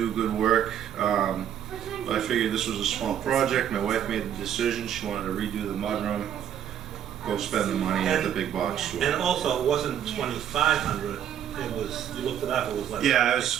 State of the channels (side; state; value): left; quieter; 9.8 dB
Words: good work. But I figured this was a small project. My wife made the decision. She wanted to redo the mudroom. Go spend the money at the big box store. And also, it wasn't $2,500. It was, you looked it up, it was like... Yeah, it